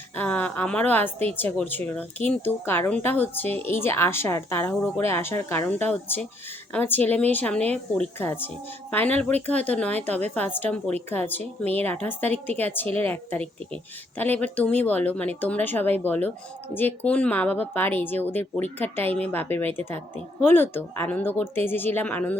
আমারও আসতে ইচ্ছা করছিল না, কিন্তু কারণটা হচ্ছে এই যে আসার তাড়াহুড়ো করে আসার কারণটা হচ্ছে আমার ছেলে মেয়ের সামনে পরীক্ষা আছে। ফাইনাল পরীক্ষা হয়তো নয়, তবে ফার্স্ট টার্ম পরীক্ষা আছে, মেয়ের 28 তারিখ থেকে আর ছেলের 1 তারিখ থেকে। তাহলে এবার তুমি বলো, মানে তোমরা সবাই বলো, যে কোন মা বাবা পারে যে ওদের পরীক্ষার টাইমে বাপের বাড়িতে থাকতে? হলো তো, আনন্দ করতে এসেছিলাম, আনন্দ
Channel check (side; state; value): both; normal; correlation 0.69